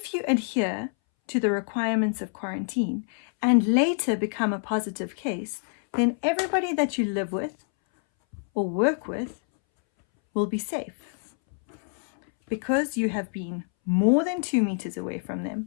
you adhere to the requirements of quarantine and later become a positive case, then everybody that you live with or work with will be safe, because you have been more than 2 meters away from them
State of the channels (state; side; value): silent; right; 61 dB below the other